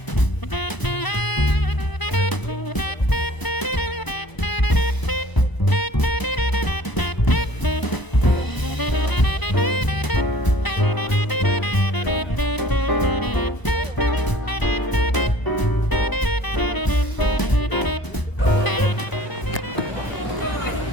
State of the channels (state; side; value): late; right; 1.0 ms